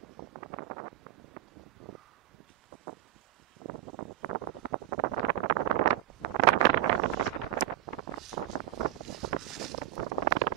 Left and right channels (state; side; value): quieter; left; 14.4 dB